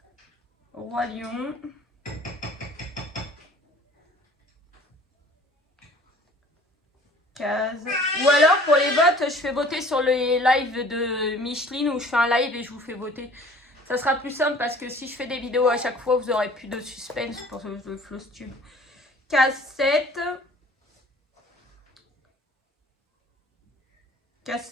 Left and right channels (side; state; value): both; normal; correlation 0.50